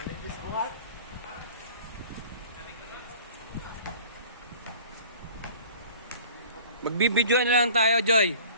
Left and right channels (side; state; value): both; inverted; correlation -0.46